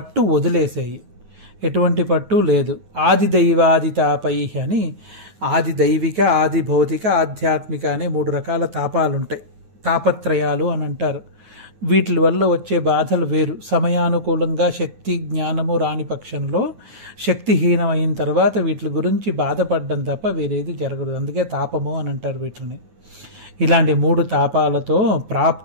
వదిలేసాయి. ఎటువంటి పట్టు లేదు. ఆది దైవాదితాపై అని ఆది దైవిక, ఆది భౌతిక, ఆధ్యాత్మిక అనే 3 రకాల తాపాలుంటాయి, తాపత్రయాలు అని అంటారు. వీటి వల్ల వచ్చే బాధలు వేరు. సమయానుకూలంగా శక్తి జ్ఞానము రాని పక్షంలో, శక్తిహీనమైన తర్వాత వీటి గురించి బాధపడడం తప్ప వేరేది జరగదు. అందుకే తాపము అని అంటారు వీటిని. ఇలాంటి 3 తాపాలతో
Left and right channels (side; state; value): left; late; 9.4 ms